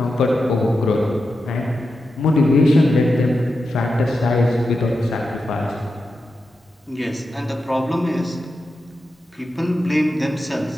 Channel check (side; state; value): both; normal; correlation 0.89